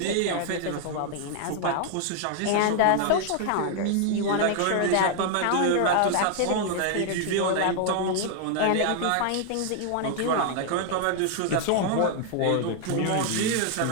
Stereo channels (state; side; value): different; both; correlation 0.00